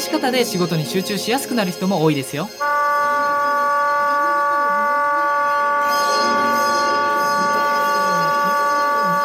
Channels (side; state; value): both; identical; correlation 1.00